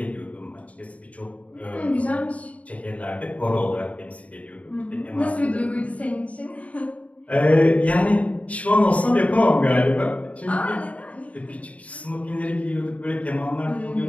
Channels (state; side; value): late; right; 0.067 ms